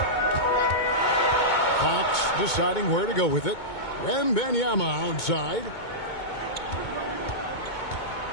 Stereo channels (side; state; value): right; late; 2.2 ms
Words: Fox deciding where to go with it. Wembanyama outside.